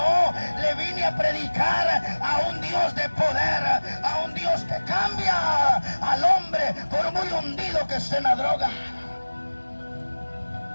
le vine a predicar a un Dios de poder, a un Dios que cambia al hombre por muy hundido que esté en la droga.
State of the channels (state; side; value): inverted; both; correlation -1.00